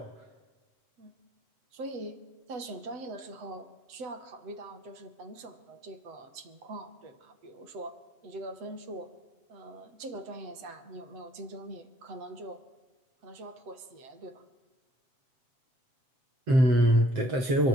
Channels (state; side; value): late; left; 7.9 ms